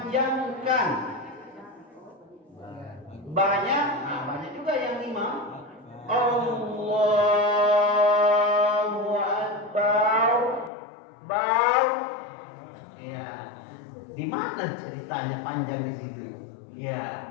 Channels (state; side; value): drops out; right; at 10.7 s